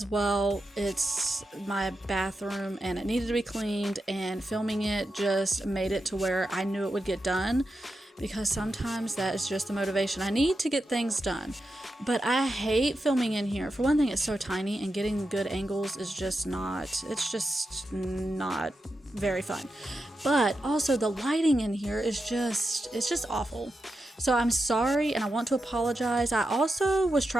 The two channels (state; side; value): normal; both; correlation 0.88